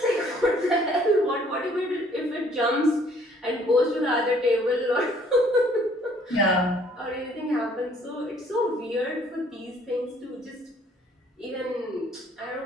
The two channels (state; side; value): normal; both; correlation 0.60